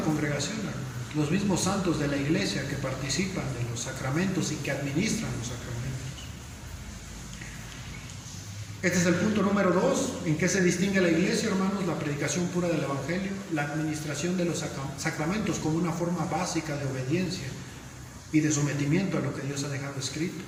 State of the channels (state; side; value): identical; both; correlation 1.00